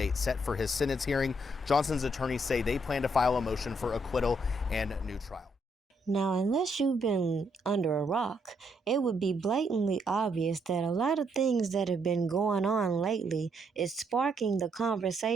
set for his sentence hearing. Johnson's attorneys say they plan to file a motion for acquittal and new trial. Now, unless you've been under a rock, it would be blatantly obvious that a lot of things that have been going on lately is sparking the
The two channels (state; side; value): normal; both; correlation 0.74